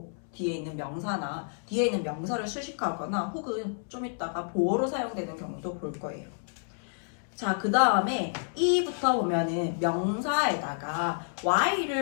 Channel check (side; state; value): right; silent; 58 dB below the other